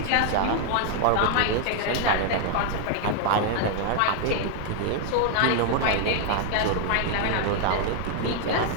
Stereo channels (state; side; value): different; both; correlation 0.00